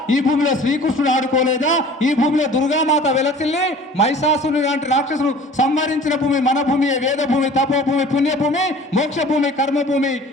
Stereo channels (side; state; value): both; normal; correlation 0.46